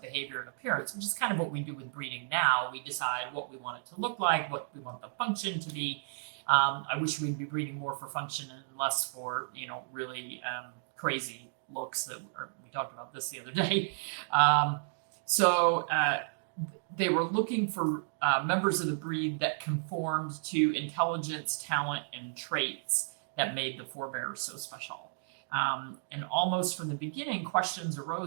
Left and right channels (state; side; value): silent; left; digital silence